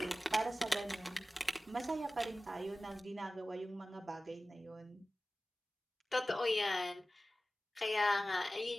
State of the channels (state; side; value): normal; both; correlation 0.96